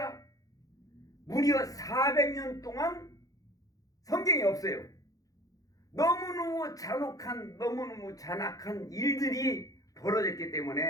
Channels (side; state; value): right; late; 0.17 ms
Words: 무려 400년 동안 성경에 없어요. 너무너무 잔악한 일들이 벌어졌기